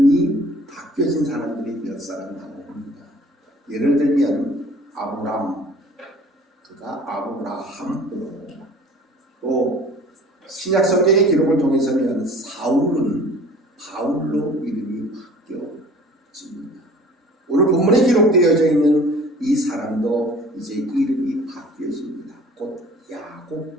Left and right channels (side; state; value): both; normal; correlation 0.47